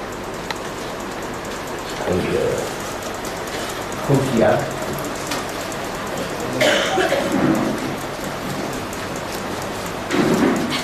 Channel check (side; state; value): both; identical; correlation 1.00